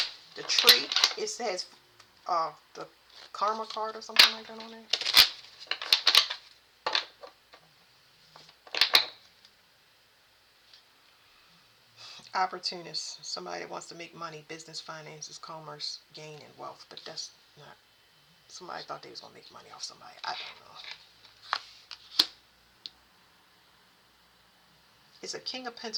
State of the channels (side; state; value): both; identical; correlation 1.00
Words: the tree. It says the karma card or something like that on there. Opportunist. Somebody that wants to make money, business, finances, commerce, gain, and wealth. But that's not. Somebody thought they was going to make money off somebody. I don't know. It's a King of